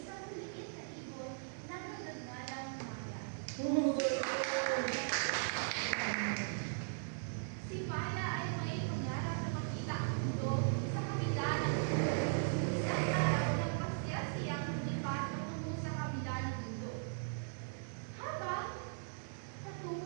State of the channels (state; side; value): silent; left; digital silence